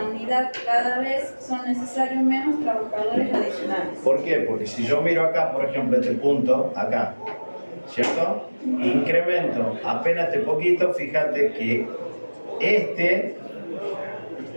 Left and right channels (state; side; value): inverted; both; correlation -1.00